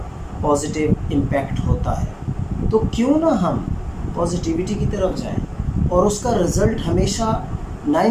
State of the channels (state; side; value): identical; both; correlation 1.00